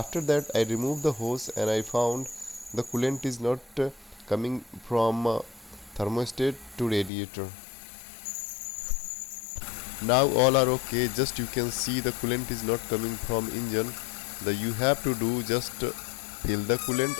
that I removed the hose and I found the coolant is not coming from thermostat to radiator. Now all are okay. Just you can see the coolant is not coming from engine. You have to do just fill the coolant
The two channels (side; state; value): right; drops out; at 7.1 s